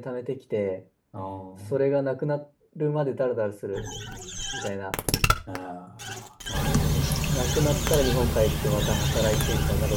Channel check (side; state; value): both; identical; correlation 1.00